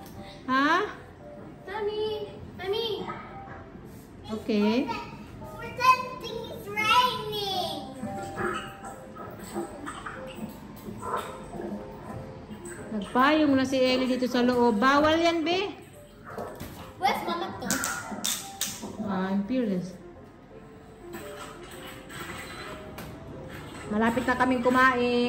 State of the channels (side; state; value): both; identical; correlation 1.00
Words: Ha? Mommy! Mommy! Okay. Pretending it's raining! Nagpayong na si Ellie dito sa loob. Bawal yan, be. Where's Mama to? I'm fearless. Malapit na kaming